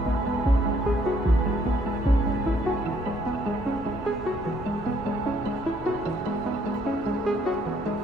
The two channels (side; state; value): both; normal; correlation 0.66